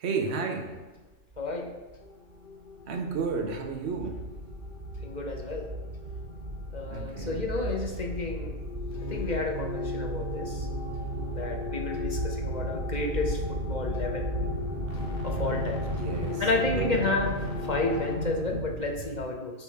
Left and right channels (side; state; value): left; late; 2.1 ms